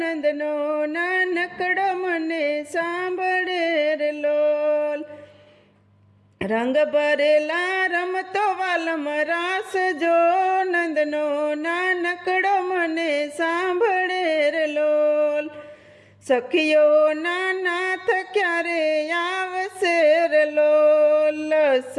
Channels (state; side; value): identical; both; correlation 1.00